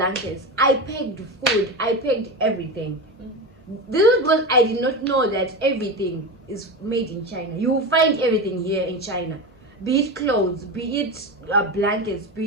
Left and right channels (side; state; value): both; normal; correlation 0.21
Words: I packed food. I packed everything. This is because I did not know that everything is made in China. You will find everything here in China. Be it clothes, be it blankets,